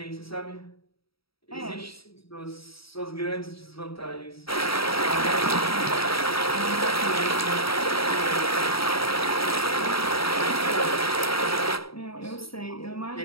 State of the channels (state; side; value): late; right; 0.76 ms